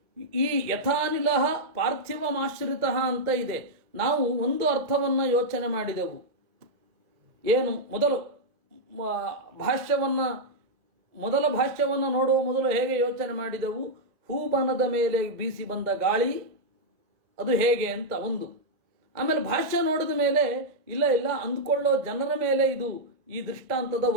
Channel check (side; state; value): left; late; 1.8 ms